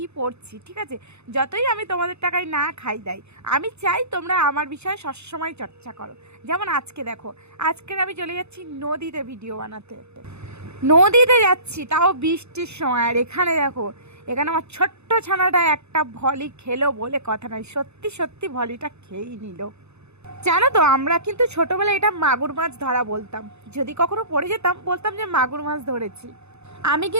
পড়ছি। ঠিক আছে, যতই আমি তোমাদের টাকায় না খাই দেয়, আমি চাই তোমরা আমার বিষয়ে সবসময় চর্চা করো। যেমন আজকে দেখো, আজকের আমি চলে যাচ্ছি নদীতে ভিডিও বানাতে। নদীতে যাচ্ছি, তাও বৃষ্টির সময়। আর এখানে দেখো, এখানে আমার ছোট্ট ছানাটা একটা ভলি খেলো বলে কথা নয়, সত্যি সত্যি ভলিটা খেয়েই নিল। জানো তো, আমরা কিন্তু ছোটবেলায় এটা মাগুর মাছ ধরা বলতাম। যদি কখনো পড়ে যেতাম, বলতাম যে মাগুর মাছ ধরেছি। আমি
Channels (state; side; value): late; left; 0.81 ms